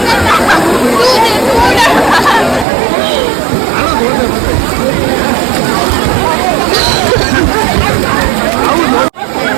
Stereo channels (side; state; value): left; drops out; at 2.7 s